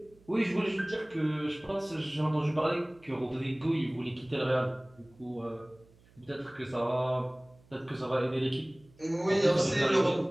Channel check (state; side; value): noise; right; hum, 28 dB below the sound